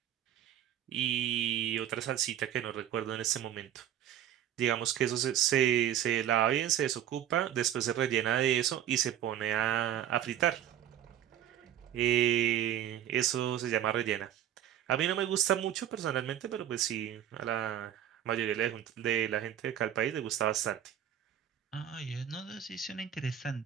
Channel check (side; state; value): left; quieter; 10.7 dB